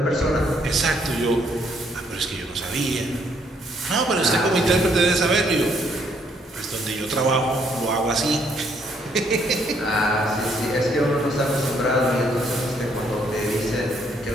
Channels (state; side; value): normal; both; correlation 0.69